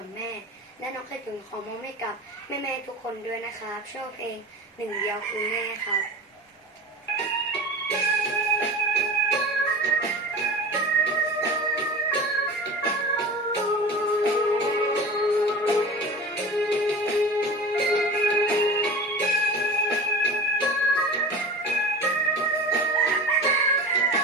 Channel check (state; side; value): normal; both; correlation 0.34